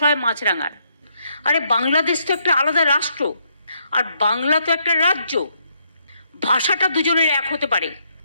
হয় মাছরাঙার। আরে বাংলাদেশ তো একটা আলাদা রাষ্ট্র, আর বাংলা তো একটা রাজ্য। ভাষাটা দুজনের এক হতে পারে।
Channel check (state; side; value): inverted; both; correlation -0.74